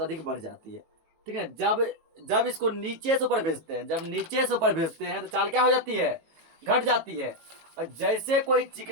अधिक बढ़ जाती है ठीक है। जब इसको नीचे से ऊपर भेजते हैं, जब नीचे से ऊपर भेजते हैं तो चाल क्या हो जाती है, घट जाती है। और जैसे कोई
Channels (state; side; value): late; left; 18 ms